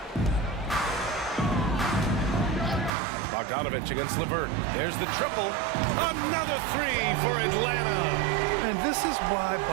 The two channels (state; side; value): drops out; left; at 2.9 s